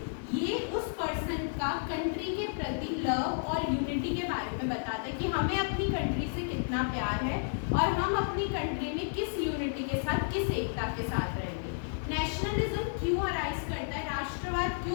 ये उस पर्सन का कंट्री के प्रति लव और यूनिटी के बारे में बताता है कि हमें अपनी कंट्री से कितना प्यार है और हम अपनी कंट्री में किस यूनिटी के साथ, किस एकता के साथ रहेंगे. नेशनलिज्म क्यों अराइज करता है, राष्ट्रवाद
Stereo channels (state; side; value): silent; right; digital silence